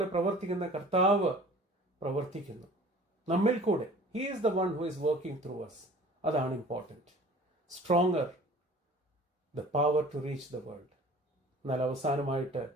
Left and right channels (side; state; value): both; normal; correlation 0.46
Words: പ്രവർത്തിക്കുന്ന കർത്താവ് പ്രവർത്തിക്കുന്നു നമ്മിൽ കൂടെ. He is the one who is working through us. അതാണ് important. Stronger, the power to reach the world. എന്നാൽ അവസാനമായിട്ട്